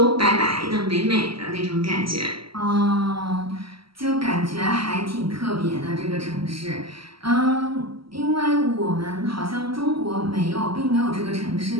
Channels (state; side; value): late; left; 0.75 ms